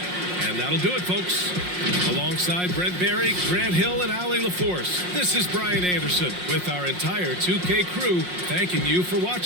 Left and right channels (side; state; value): left; late; 5.6 ms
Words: And that'll do it, folks. Alongside Brent Barry, Grant Hill, and Allie LaForce, this is Brian Anderson with our entire 2K crew thanking you for